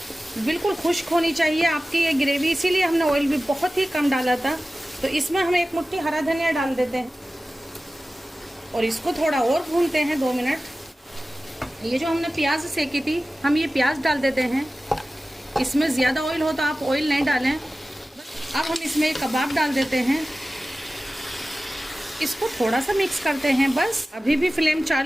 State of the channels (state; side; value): normal; both; correlation 0.96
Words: बिल्कुल खुश्क होनी चाहिए आपकी ये ग्रेवी, इसीलिए हमने ऑयल भी बहुत ही कम डाला था। तो इसमें हम 1 मुट्ठी हरा धनिया डाल देते हैं और इसको थोड़ा और भूनते हैं 2 मिनट। ये जो हमने प्याज सेकी थी, हम ये प्याज डाल देते हैं। इसमें ज़्यादा ऑयल हो तो आप ऑयल नहीं डालें। अब हम इसमें कबाब डाल देते हैं, इसको थोड़ा सा मिक्स करते हैं बस। अभी भी फ्लेम